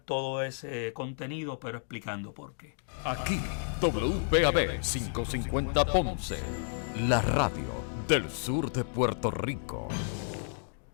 ese contenido, pero explicando por qué. Aquí, WPAB 550 Ponce, la radio del sur de Puerto Rico.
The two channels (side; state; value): right; silent; digital silence